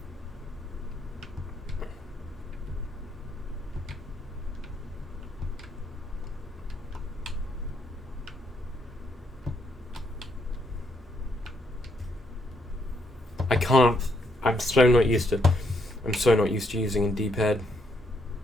I'm so not used to using a D-pad.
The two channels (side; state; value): both; normal; correlation 0.74